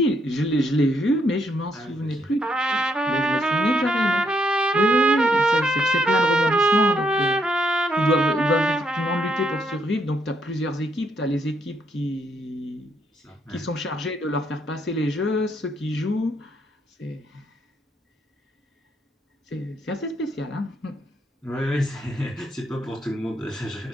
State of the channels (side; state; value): both; normal; correlation 0.75